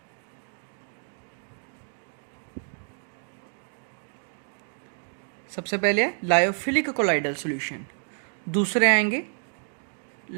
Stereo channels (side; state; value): left; silent; 58 dB below the other